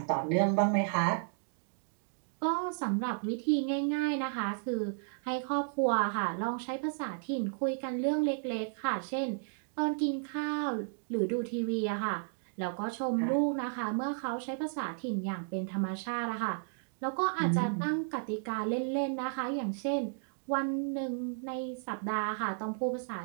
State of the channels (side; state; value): left; silent; digital silence